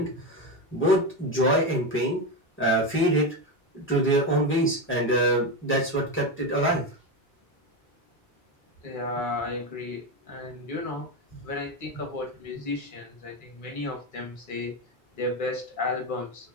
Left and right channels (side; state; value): both; normal; correlation 0.14